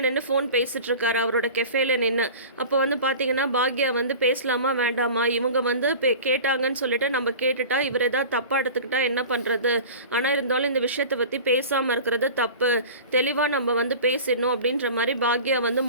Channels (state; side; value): inverted; both; correlation -0.37